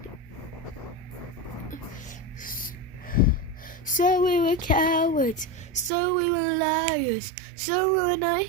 So we were cowards, so we were liars, so we were not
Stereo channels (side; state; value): left; drops out; at 5.9 s